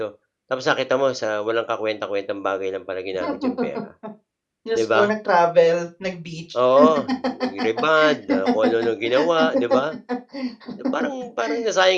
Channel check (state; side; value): identical; both; correlation 1.00